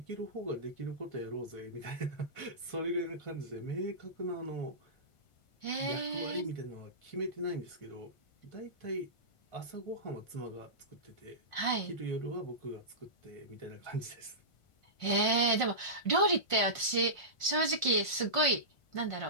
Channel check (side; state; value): right; late; 1.5 ms